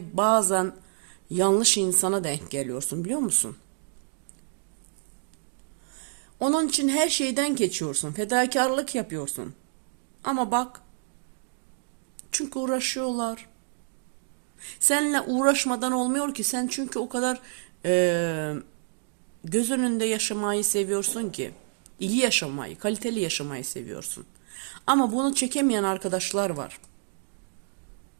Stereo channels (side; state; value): left; silent; digital silence